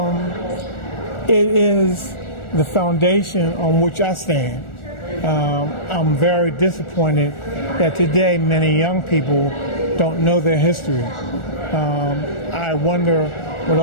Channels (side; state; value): right; late; 1.4 ms